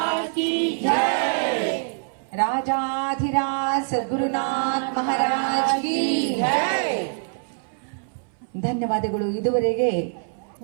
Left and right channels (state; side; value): silent; left; 59 dB below the other